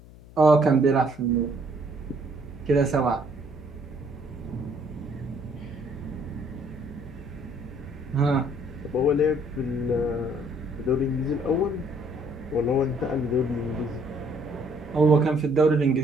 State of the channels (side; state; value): left; noise; hum, 20 dB below the sound